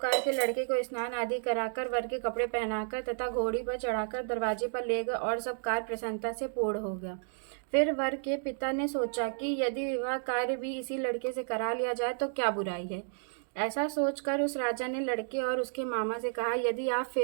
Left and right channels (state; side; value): silent; left; digital silence